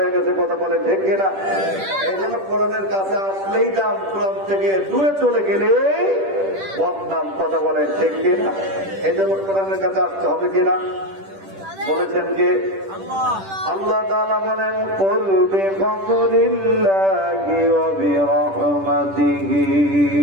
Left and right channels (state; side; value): late; left; 10 ms